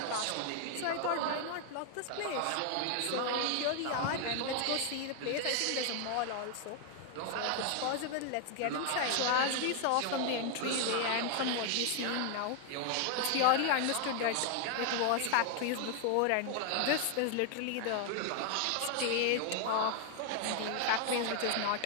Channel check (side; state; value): both; different; correlation 0.00